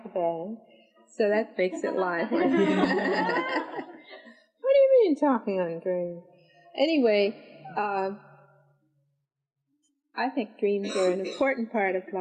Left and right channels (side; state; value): both; identical; correlation 1.00